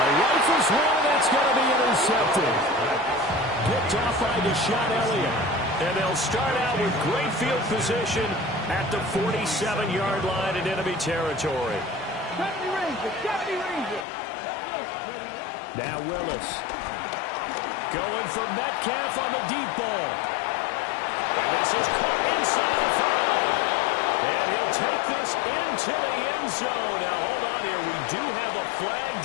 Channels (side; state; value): right; drops out; at 14.1 s